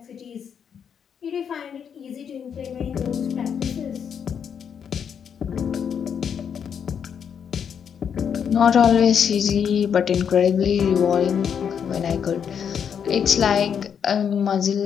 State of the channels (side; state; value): right; quieter; 7.6 dB